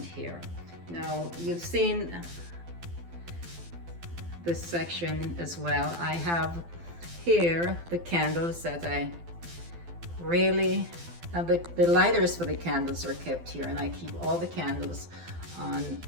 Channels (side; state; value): left; late; 12 ms